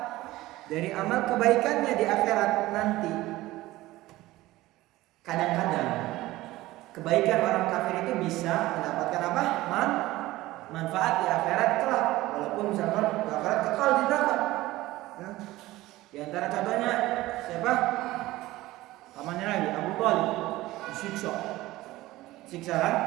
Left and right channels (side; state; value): left; quieter; 17.6 dB